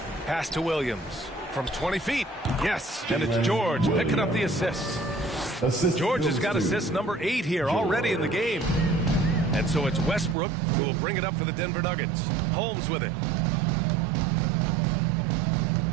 Pass to Williams from 20 feet. Yes, and it's George picking up the assist. George has got assist number 8 here already in the game. And so it's Westbrook who will bring it up for the Denver Nuggets. Holmes with it.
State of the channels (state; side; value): drops out; left; at 10.4 s